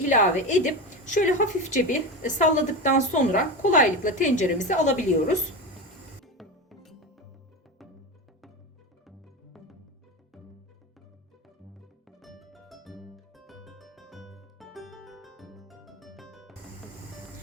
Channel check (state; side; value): normal; both; correlation 0.21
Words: edip şöyle hafifçe bir salladıktan sonra kolaylıkla tenceremize alabiliyoruz.